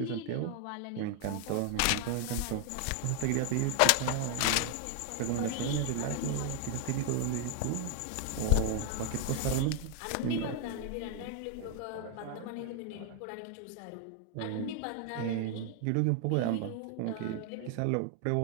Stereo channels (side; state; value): both; different; correlation 0.00